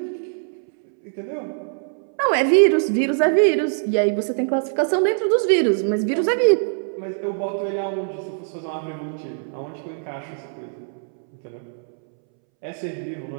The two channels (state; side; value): silent; left; 64 dB below the other